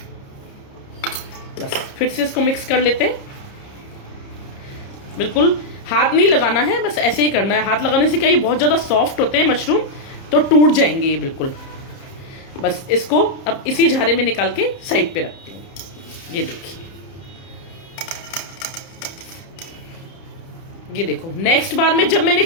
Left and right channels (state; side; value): late; right; 30 ms